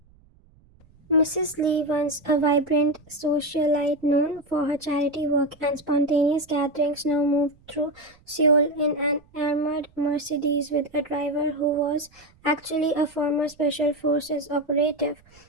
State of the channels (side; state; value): right; noise; rumble, 30 dB below the sound